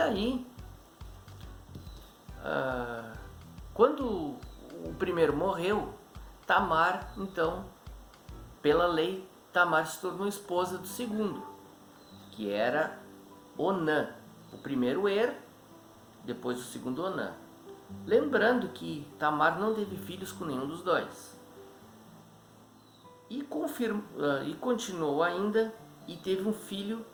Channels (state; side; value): identical; both; correlation 1.00